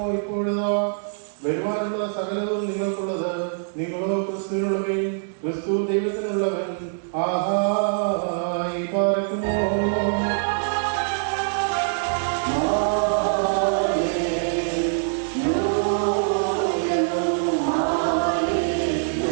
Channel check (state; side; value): silent; left; digital silence